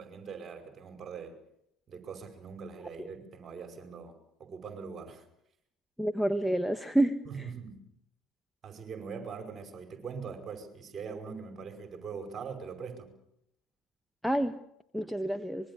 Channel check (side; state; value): both; normal; correlation 0.92